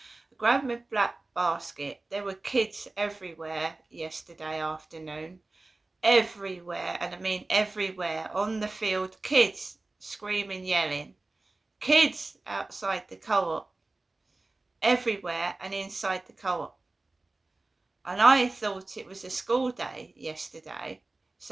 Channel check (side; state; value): left; quieter; 3.2 dB